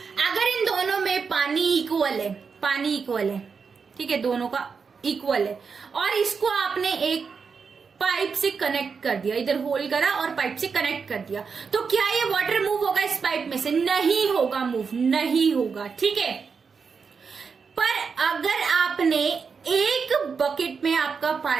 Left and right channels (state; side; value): quieter; left; 5.6 dB